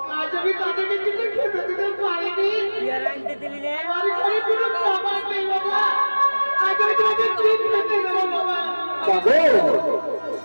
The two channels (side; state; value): both; inverted; correlation -1.00